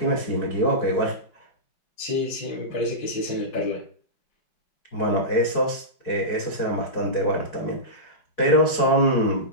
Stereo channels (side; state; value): right; late; 4.7 ms